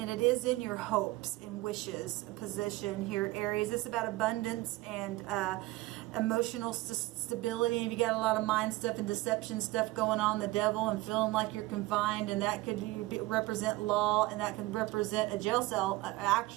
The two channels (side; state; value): left; quieter; 19.5 dB